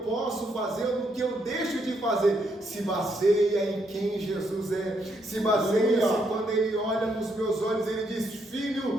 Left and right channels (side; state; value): both; normal; correlation 0.76